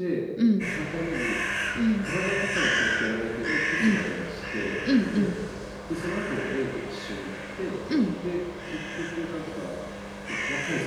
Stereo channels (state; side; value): identical; both; correlation 1.00